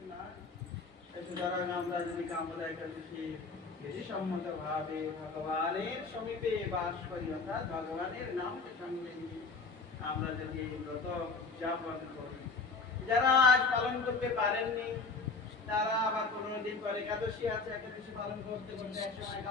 না। সুতরাং আমরা যদি কামনা একাদশী বেশি সম্মত ভাবে ভগবানের সমীপে বাস করি, অর্থাৎ ভগবানের নামকে সঙ্গে নিয়ে আমরা যদি এই ব্রত উদযাপন করি, যারা আজ পালন করতে পারেননি তারা আবার 15 দিন পরে একাদশী আছে, একাদশী পালন করতে করতে একসময়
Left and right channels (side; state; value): right; quieter; 4.2 dB